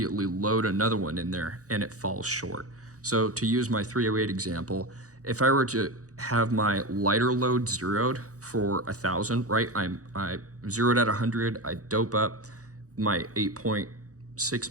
load another one in there and it falls short. So to use my .308 example, if I were to have my lighter load zeroed for 1,000, right? I zeroed at 100, I dope up my 8.6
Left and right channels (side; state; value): left; late; 0.66 ms